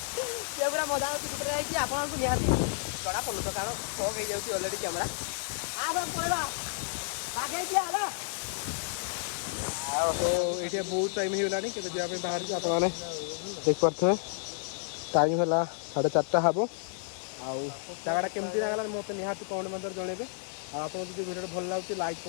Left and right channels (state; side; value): silent; right; digital silence